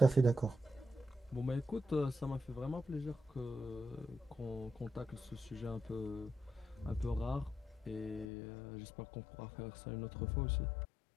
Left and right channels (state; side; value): drops out; right; at 8.2 s